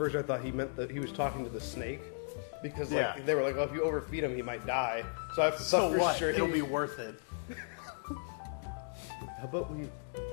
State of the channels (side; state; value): right; silent; digital silence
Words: I thought he meant that he was talking to the snake. Because like they were like, oh, if you overfeed him, he might die. So I thought for sure It'll be worth it. How about we...